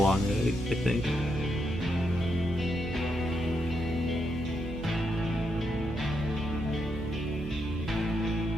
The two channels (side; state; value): right; noise; hum, 10 dB below the sound